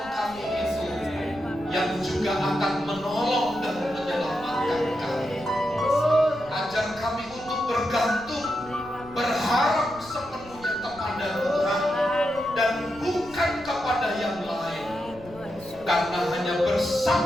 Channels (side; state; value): left; noise; rumble, 20 dB below the sound